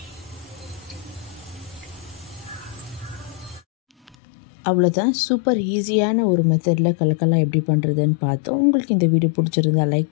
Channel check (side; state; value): right; drops out; at 4.2 s